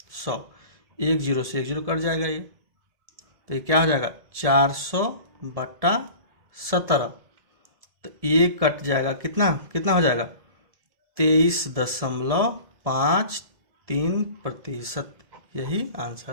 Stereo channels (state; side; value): late; left; 1.7 ms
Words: 100, 1 0 से 1 0 कट जाएगा ये, तो ये क्या हो जाएगा 400 बट्टा 17, तो ये कट जाएगा कितना कितना हो जाएगा 23.53%, यही